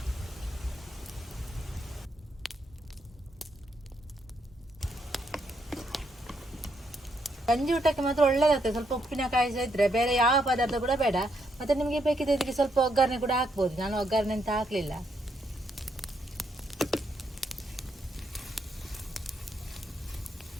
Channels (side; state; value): both; normal; correlation 0.77